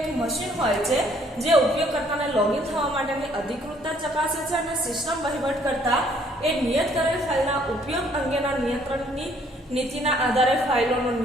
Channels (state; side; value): normal; both; correlation 0.63